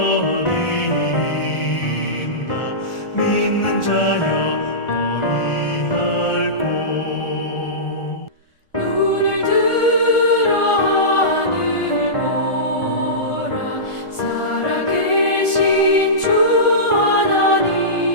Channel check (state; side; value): late; right; 1.4 ms